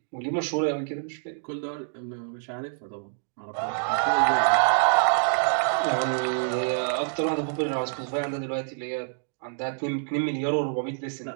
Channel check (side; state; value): left; silent; digital silence